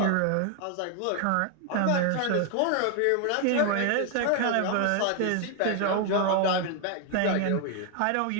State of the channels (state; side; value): different; both; correlation 0.01